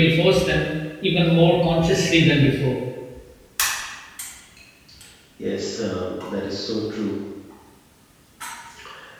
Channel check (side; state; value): both; identical; correlation 1.00